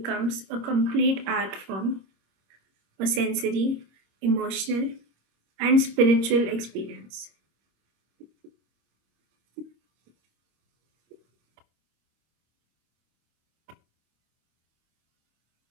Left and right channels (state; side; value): late; left; 25 ms